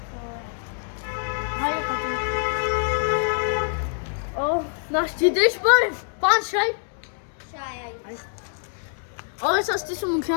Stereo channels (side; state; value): right; silent; digital silence